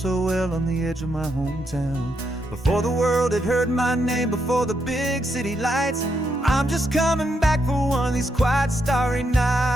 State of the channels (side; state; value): both; normal; correlation 0.80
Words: well on the edge of my hometown. Before the world had heard my name, before the big city lights, I'm just coming back for one of these quiet, starry